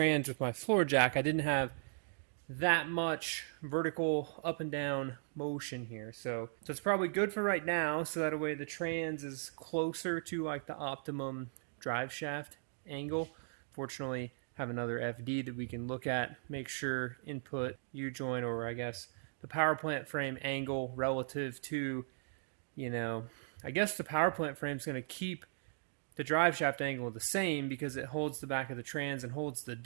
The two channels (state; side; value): silent; left; digital silence